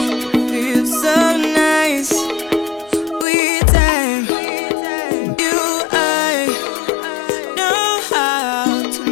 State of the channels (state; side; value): drops out; right; at 3.2 s